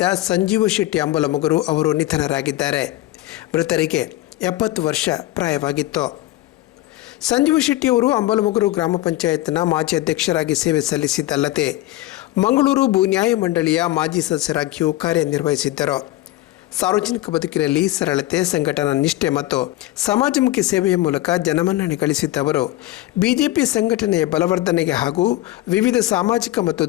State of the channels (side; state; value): right; quieter; 16.2 dB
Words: ಸಂಜೀವ ಶೆಟ್ಟಿ ಅಂಬಲಮುಗರು ಅವರು ನಿಧನರಾಗಿದ್ದಾರೆ. ಮೃತರಿಗೆ 70 ವರ್ಷ ಪ್ರಾಯವಾಗಿತ್ತು. ಸಂಜೀವ ಶೆಟ್ಟಿ ಅವರು ಅಂಬಲಮುಗರು ಗ್ರಾಮ ಪಂಚಾಯತ್ನ ಮಾಜಿ ಅಧ್ಯಕ್ಷರಾಗಿ ಸೇವೆ ಸಲ್ಲಿಸಿದ್ದಲ್ಲದೆ ಮಂಗಳೂರು ಭೂ ನ್ಯಾಯ ಮಂಡಳಿಯ ಮಾಜಿ ಸದಸ್ಯರಾಗಿಯೂ ಕಾರ್ಯನಿರ್ವಹಿಸಿದ್ದರು. ಸಾರ್ವಜನಿಕ ಬದುಕಿನಲ್ಲಿ ಸರಳತೆ, ಸಂಘಟನಾ ನಿಷ್ಠೆ ಮತ್ತು ಸಮಾಜಮುಖಿ ಸೇವೆಯ ಮೂಲಕ ಜನಮನ್ನಣೆ ಗಳಿಸಿದ್ದವರು ಬಿಜೆಪಿ ಸಂಘಟನೆಯ ಬಲವರ್ಧನೆಗೆ ಹಾಗೂ ವಿವಿಧ ಸಾಮಾಜಿಕ ಮತ್ತು